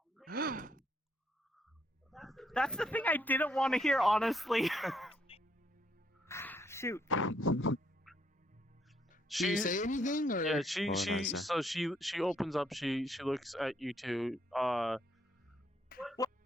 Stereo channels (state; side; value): normal; both; correlation 0.72